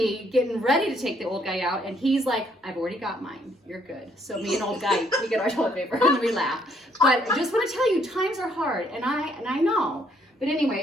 getting ready to take the old guy out, and he's like, I've already got mine. You're good. So me and old guy, we get our toilet paper, and we laugh. But I just want to tell you, times are hard, and I know. But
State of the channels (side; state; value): both; normal; correlation 0.68